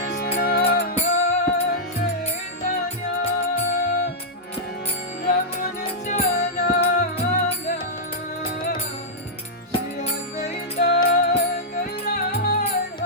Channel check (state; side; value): normal; both; correlation -0.09